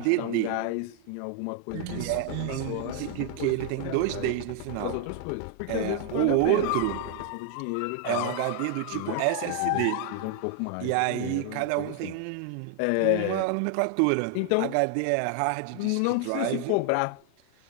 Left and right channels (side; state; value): both; different; correlation 0.00